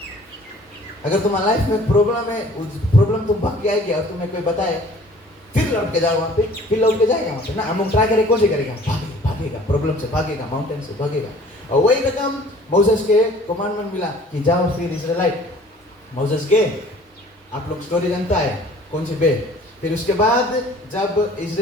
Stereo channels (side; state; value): both; normal; correlation 0.51